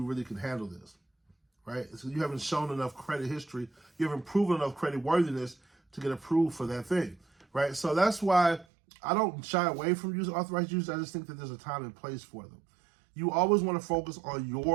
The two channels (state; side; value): drops out; left; at 8.7 s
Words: really can handle this, right? So you haven't shown enough credit history, you haven't proven enough credit worthiness to get approved for that thing, right? So that's why I don't shy away from using authorized users. I just think that there's a time and place for them. You always want to focus on